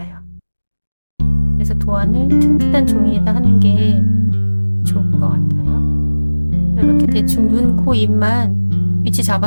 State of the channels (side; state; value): both; inverted; correlation -1.00